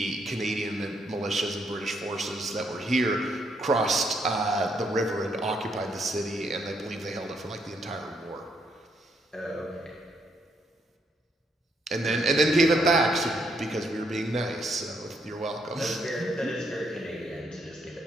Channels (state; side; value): normal; both; correlation 0.74